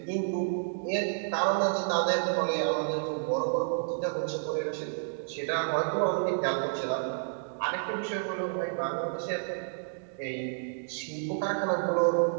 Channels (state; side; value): silent; left; digital silence